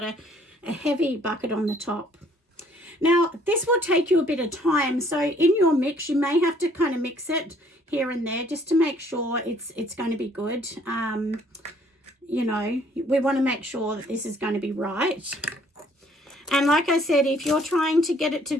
a heavy bucket on the top. Now, this will take you a bit of time, so in your mix, you may have to kind of mix it here and there just to make sure it's going to be good. We want to make sure that this is going to be right. And like I said, if you're trying to get it to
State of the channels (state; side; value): normal; both; correlation 0.61